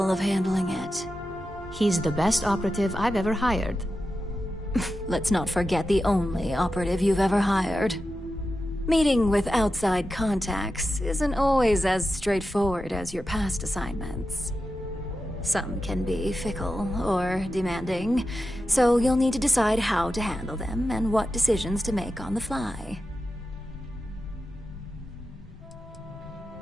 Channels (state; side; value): normal; both; correlation 0.91